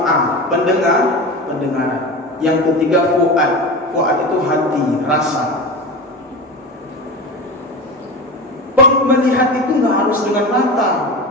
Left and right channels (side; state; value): both; normal; correlation 0.27